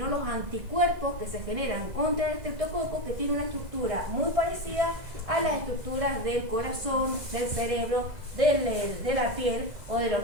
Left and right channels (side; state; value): left; late; 2.0 ms